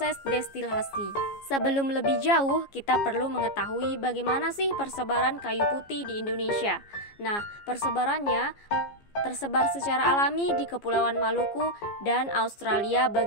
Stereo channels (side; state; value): right; late; 15 ms